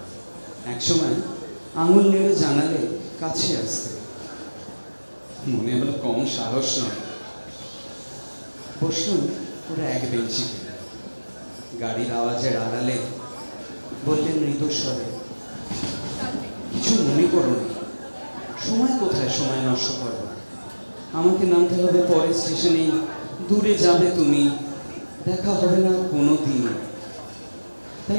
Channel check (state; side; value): inverted; both; correlation -1.00